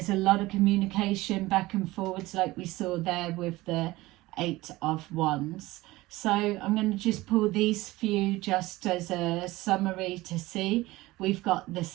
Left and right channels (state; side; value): quieter; left; 19.1 dB